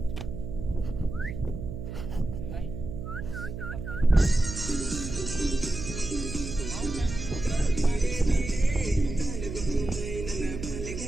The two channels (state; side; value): noise; right; hum, 7 dB below the sound